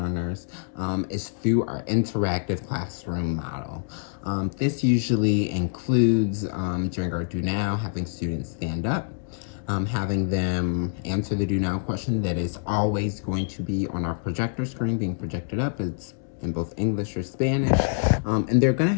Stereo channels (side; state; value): right; silent; digital silence